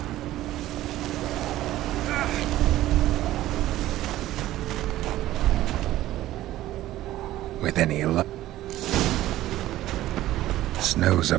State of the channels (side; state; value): left; quieter; 14.8 dB